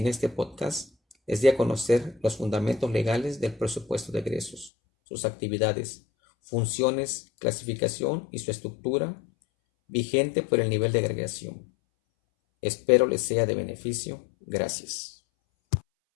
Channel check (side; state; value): right; drops out; at 4.7 s